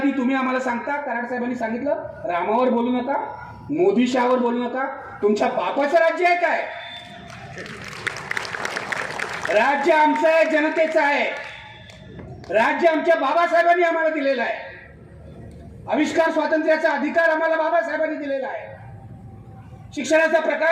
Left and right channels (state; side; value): identical; both; correlation 1.00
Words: तुम्ही आम्हाला सांगता, कराड साहेबांनी सांगितलं, रामावर बोलू नका, मोदी शहावर बोलू नका. तुमच्या बापाचं राज्य आहे काय? राज्य आमचं आहे, जनतेचं आहे. राज्य आमच्या बाबासाहेबांनी आम्हाला दिलेलं आहे. आविष्कार स्वातंत्र्याचा अधिकार आम्हाला बाबासाहेबांनी दिलेला आहे. शिक्षणाचा